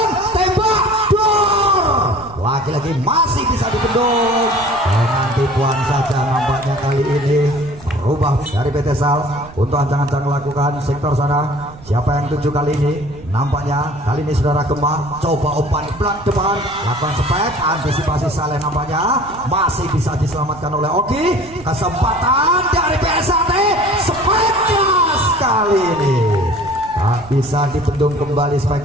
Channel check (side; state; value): right; noise; rumble, 19 dB below the sound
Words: tembak, dor, lagi-lagi masih bisa dibendung dengan tipuan saja. Nampaknya kali ini merubah dari PT Sal untuk ancang-ancang melakukan sektor sana. Siapa yang tuju kali ini? Nampaknya kali ini saudara Gema coba umpan belak depan, lakukan spek, antisipasi Saleh nampaknya masih bisa diselamatkan oleh Oki. Kesempatan dari PSAT, spek keras kali ini tak bisa dibendung kembali.